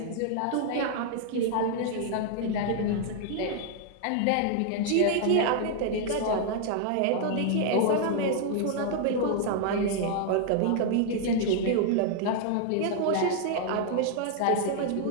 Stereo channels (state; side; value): different; both; correlation 0.00